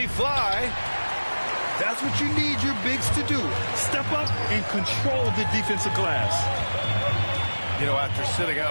fly. That's what you need your bigs to do. Step up and control the defensive glass. You know, after sitting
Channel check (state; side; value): inverted; both; correlation -1.00